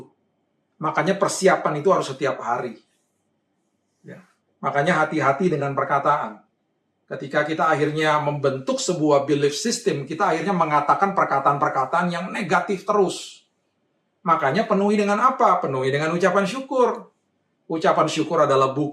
Makanya persiapan itu harus setiap hari. Ya. Makanya hati-hati dengan perkataan. Ketika kita akhirnya membentuk sebuah belief system, kita akhirnya mengatakan perkataan-perkataan yang negatif terus. Makanya penuhi dengan apa? Penuhi dengan ucapan syukur. Ucapan syukur adalah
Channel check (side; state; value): both; identical; correlation 1.00